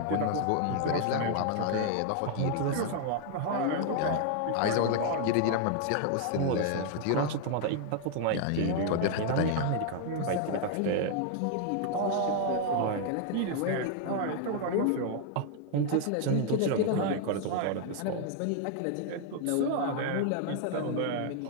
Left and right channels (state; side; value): different; both; correlation 0.00